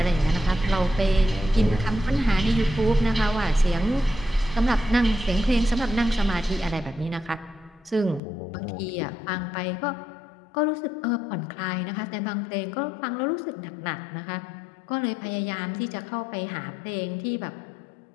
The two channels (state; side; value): drops out; right; at 8.2 s